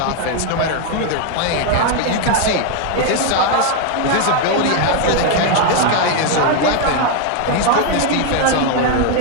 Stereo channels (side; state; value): both; different; correlation 0.01